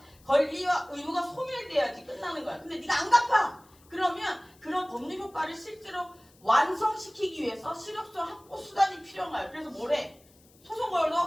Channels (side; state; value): left; noise; hiss, 29 dB below the sound